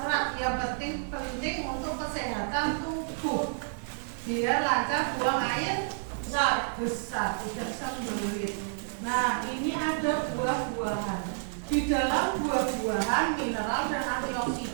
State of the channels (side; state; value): left; silent; digital silence